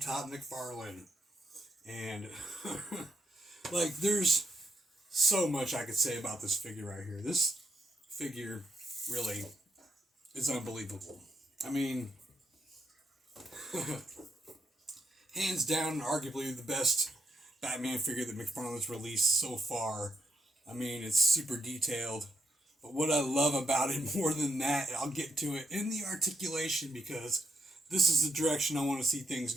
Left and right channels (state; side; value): normal; both; correlation 0.78